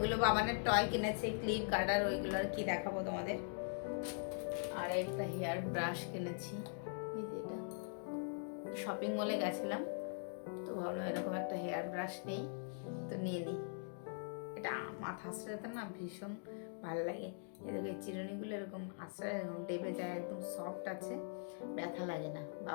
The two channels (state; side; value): silent; right; digital silence